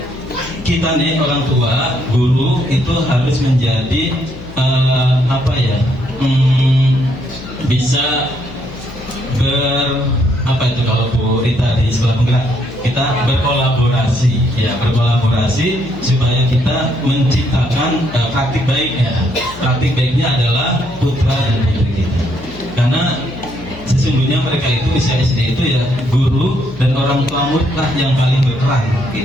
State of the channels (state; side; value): noise; left; hum, 15 dB below the sound